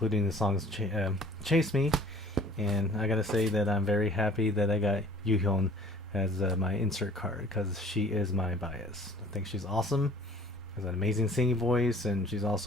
the songs Chase Me. And I gotta say that I'm very happy that I got Yuhyun as my insert card, because she is my bias. I think she's awesome. Has an amazing singing voice, and she's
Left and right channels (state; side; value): normal; both; correlation 0.50